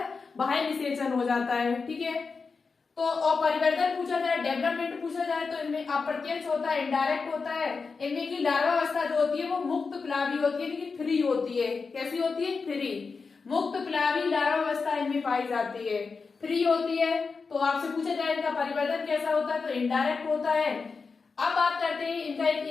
बाह्य निषेचन हो जाता है। ठीक है, तो और परिवर्तन पूछा जाए, डेवलपमेंट पूछा जाए, तो इनमें अप्रत्यक्ष होता है, इनडायरेक्ट होता है। इनमें की लार्वावस्था जो होती है वो मुक्त प्लावी होती है, इनकी फ्री होती है। कैसी होती है, फ्री। मुक्त प्लावी लार्वावस्था इनमें पाई जाती है, फ्री होती है। तो आपसे पूछा जाए इनका परिवर्तन कैसा होता है, तो इनडायरेक्ट होता है। अब बात करते हैं इनका,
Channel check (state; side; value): quieter; right; 4.7 dB